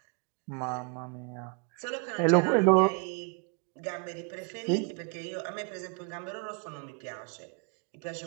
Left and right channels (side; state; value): left; quieter; 36.5 dB